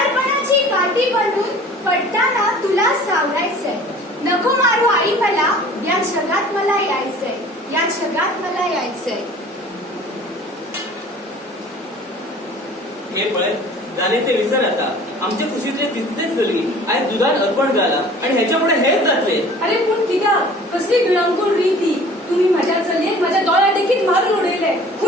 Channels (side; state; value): both; normal; correlation 0.47